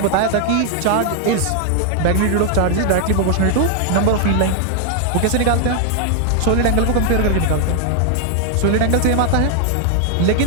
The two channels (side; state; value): both; different; correlation 0.00